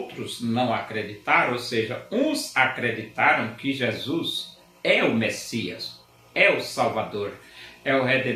não acreditaram, ou seja, uns acreditaram que Jesus é o Messias, é o Salvador, é o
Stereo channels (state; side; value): identical; both; correlation 1.00